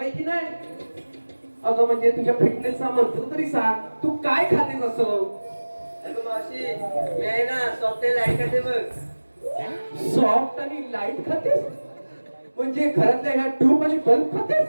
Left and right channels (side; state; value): both; inverted; correlation -1.00